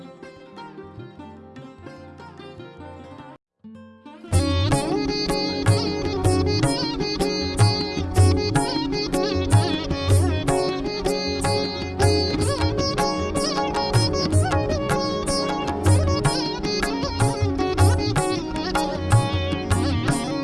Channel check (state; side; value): identical; both; correlation 1.00